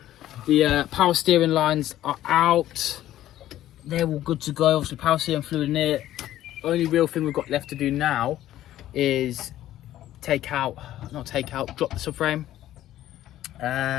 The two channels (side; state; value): right; quieter; 13.3 dB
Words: the power steering lines are out. They're all good to go. Obviously, power steering fluid in it. Only real thing we've got left to do now is drop the subframe,